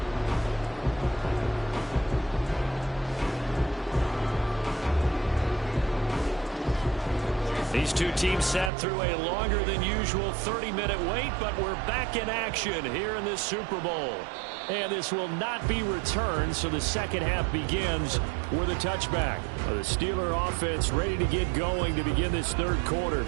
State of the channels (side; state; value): left; drops out; at 8.7 s